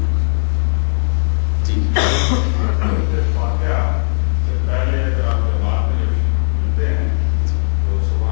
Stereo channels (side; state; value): right; silent; digital silence